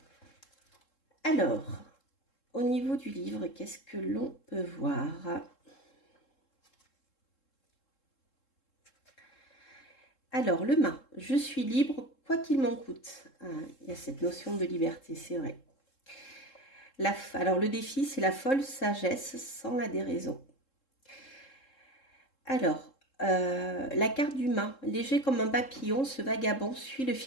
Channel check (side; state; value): right; late; 3.7 ms